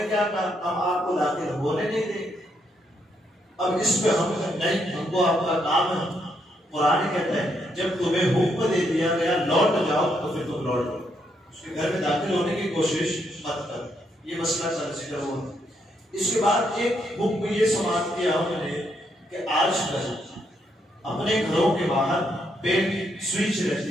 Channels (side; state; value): both; normal; correlation 0.76